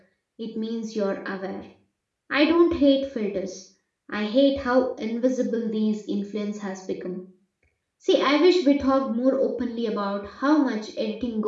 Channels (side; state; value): both; identical; correlation 1.00